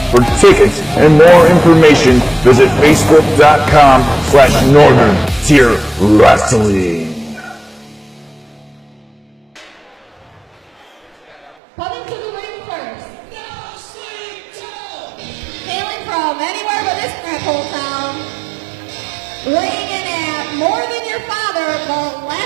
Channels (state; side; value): drops out; left; at 11.6 s